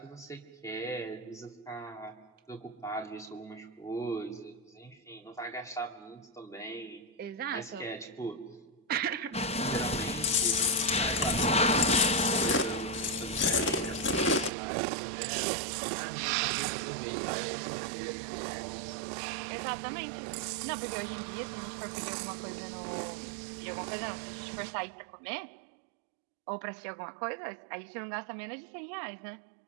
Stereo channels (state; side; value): drops out; left; at 14.5 s